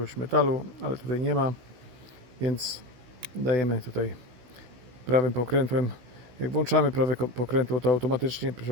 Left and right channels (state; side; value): late; left; 16 ms